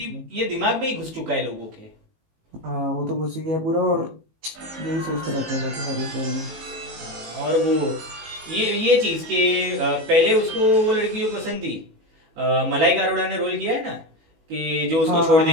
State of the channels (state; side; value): late; left; 19 ms